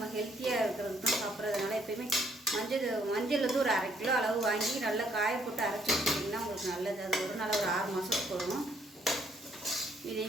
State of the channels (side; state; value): both; normal; correlation 0.68